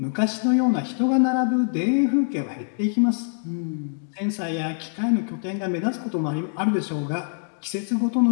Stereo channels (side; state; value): right; silent; digital silence